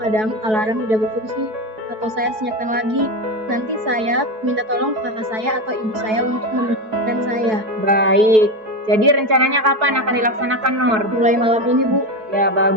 alarm tidak berfungsi atau saya senyapkan lagi. Nanti saya minta tolong ke kakak saya atau ibu saya untuk membangunkan saya. Baik, jadi rencananya kapan akan dilaksanakan, Nur? Mulai malam ini Bu. Ya,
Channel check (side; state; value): left; late; 4.6 ms